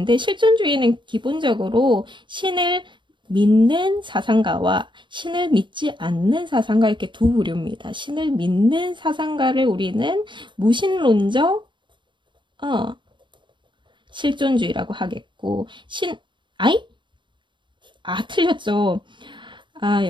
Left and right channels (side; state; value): left; late; 0.23 ms